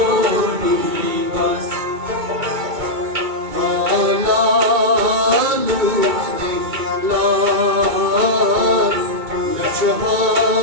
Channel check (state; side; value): late; left; 2.2 ms